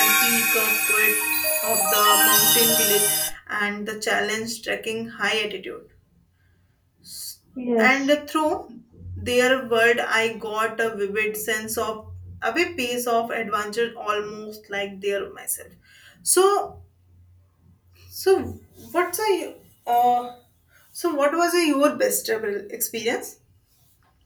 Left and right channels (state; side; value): identical; both; correlation 1.00